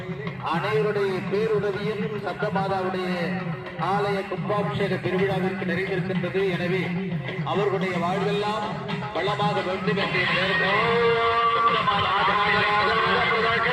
அனைவருடைய பேருதவியும் சப்தமாதாவுடைய ஆலய கும்பாபிஷேக திருவிழாவிற்கு நிறைந்திருக்கின்றது. எனவே அவர்களுடைய வாழ்வெல்லாம் வளமாக வேண்டும் என்று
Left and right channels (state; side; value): identical; both; correlation 1.00